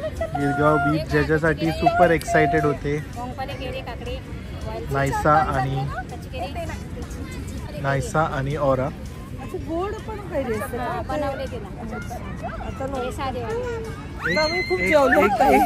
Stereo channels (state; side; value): identical; both; correlation 1.00